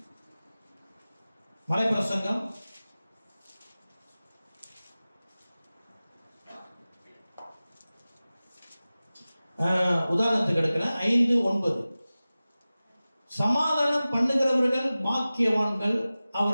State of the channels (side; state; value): both; inverted; correlation -0.97